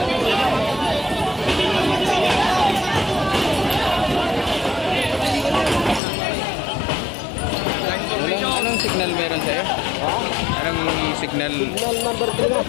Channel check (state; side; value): drops out; right; at 6.0 s